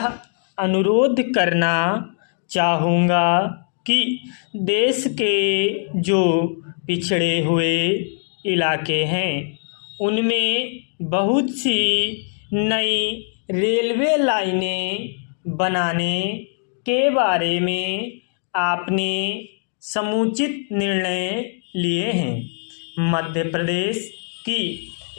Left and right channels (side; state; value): right; silent; digital silence